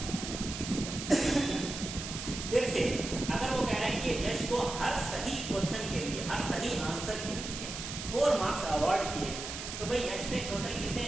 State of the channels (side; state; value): right; noise; hiss, 7 dB below the sound